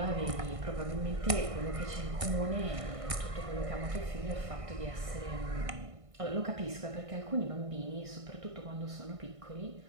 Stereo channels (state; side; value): late; left; 1.6 ms